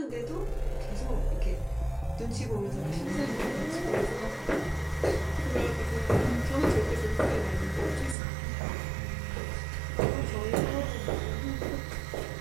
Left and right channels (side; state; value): left; drops out; at 8.2 s